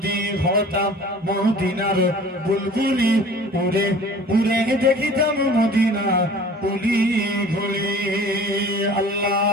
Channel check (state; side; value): normal; both; correlation 0.45